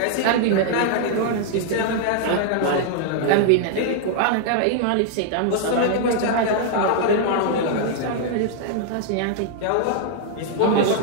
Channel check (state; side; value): different; both; correlation -0.01